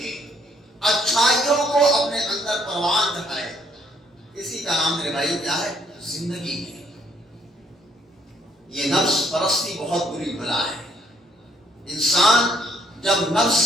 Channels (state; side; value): normal; both; correlation 0.67